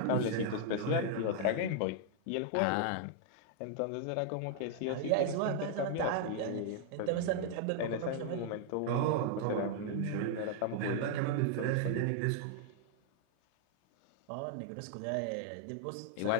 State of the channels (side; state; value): both; different; correlation -0.01